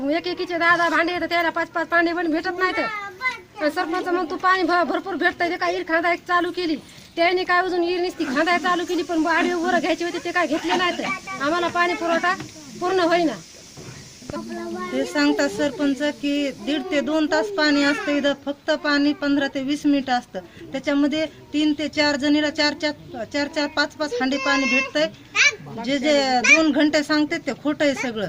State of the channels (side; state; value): both; identical; correlation 1.00